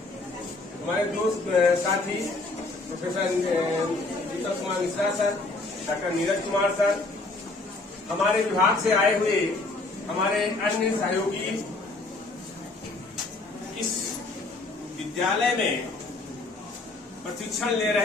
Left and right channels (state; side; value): quieter; right; 3.2 dB